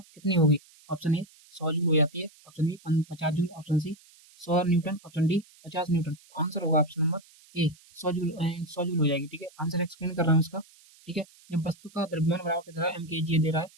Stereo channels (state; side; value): noise; right; hiss, 26 dB below the sound